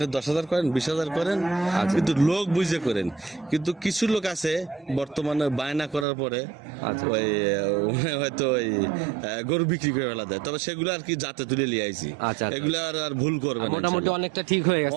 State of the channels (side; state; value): left; drops out; at 6.1 s